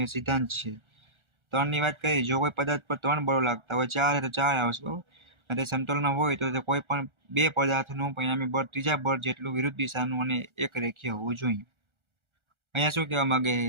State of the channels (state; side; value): late; left; 1.4 ms